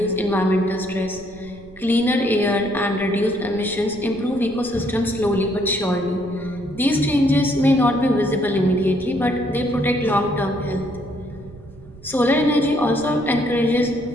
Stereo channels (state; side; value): noise; right; rumble, 20 dB below the sound